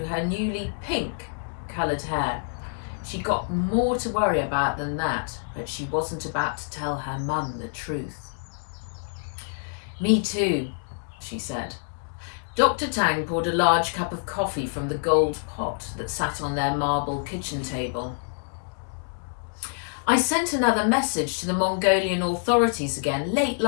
her newly pink-coloured hair. She got more to worry about than that, but she wasn't about to tell her mum the truth. Me too, she said. Dr. Tang poured a large cup of coffee from the gold pot that sat on their marble kitchen table. I sent another message to the Mongolian authorities again late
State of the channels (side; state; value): right; silent; digital silence